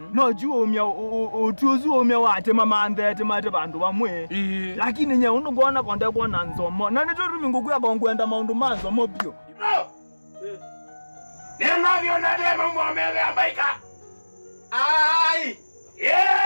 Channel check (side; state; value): both; inverted; correlation -1.00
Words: no juo umya utuzu umya wate mamande temate bantu bamwe lakini nye unongona konde kona nzomo na nito rumingu kuya kongwenda maundu manzo mobio nena byona demo mwamele ambaika ai